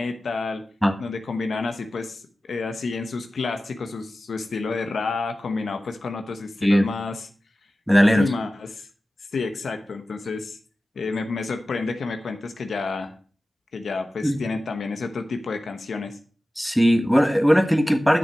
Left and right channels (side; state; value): both; normal; correlation 0.95